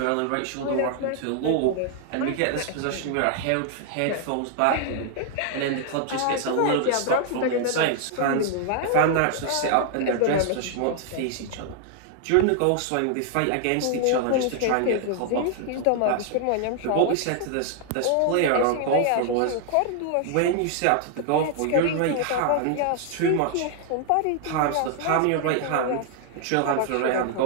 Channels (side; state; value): both; different; correlation 0.00